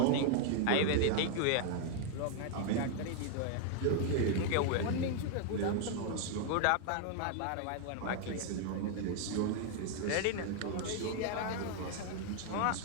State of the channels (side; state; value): both; different; correlation 0.00